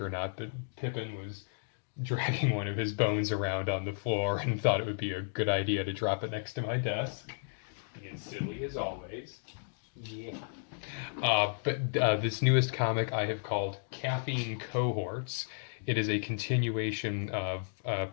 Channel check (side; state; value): right; silent; digital silence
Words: not, but Pippin was dragging one of his bones around on the floor and thought it would be a good idea to drop it next to my desk. Being silly as always. Yeah. But this newest comic I have called Caffeine Cohorts. It is a continuation of a